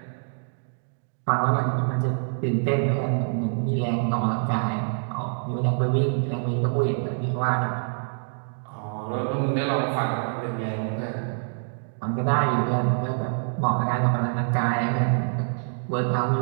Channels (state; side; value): silent; left; digital silence